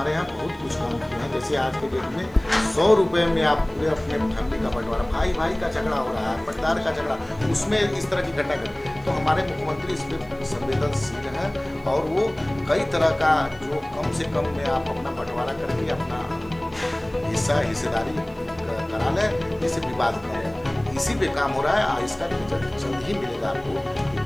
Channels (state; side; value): noise; right; hiss, 30 dB below the sound